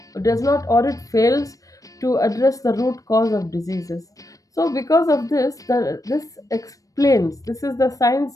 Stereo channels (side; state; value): right; late; 0.16 ms